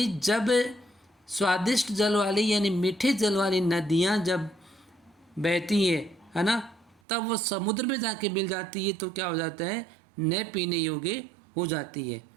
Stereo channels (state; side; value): drops out; left; at 7.0 s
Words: जब स्वादिष्ट जल वाली यानी मीठे जल वाली नदियाँ जब बहती है ना, तब वो समुद्र में जाके मिल जाती है तो क्या हो जाता है, न पीने योग्य हो जाती है।